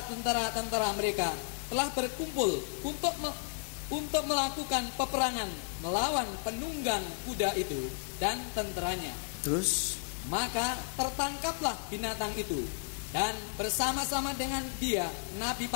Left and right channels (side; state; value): right; silent; digital silence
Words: tentara-tentara mereka telah berkumpul untuk melakukan peperangan melawan penunggang kuda itu dan tenteranya. Terus, maka tertangkaplah binatang itu, dan bersama-sama dengan dia nabi